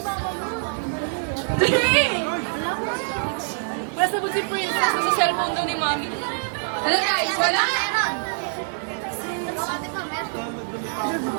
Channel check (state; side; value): silent; left; digital silence